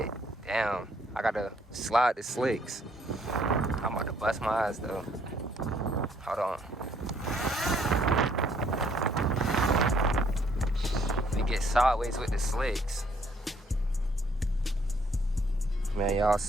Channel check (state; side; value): normal; both; correlation 0.66